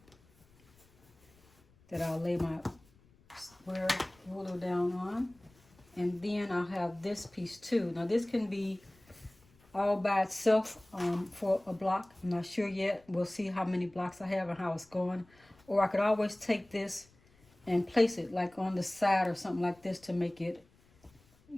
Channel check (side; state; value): left; noise; rumble, 30 dB below the sound